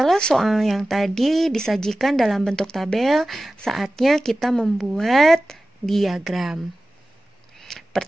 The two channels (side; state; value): both; normal; correlation 0.96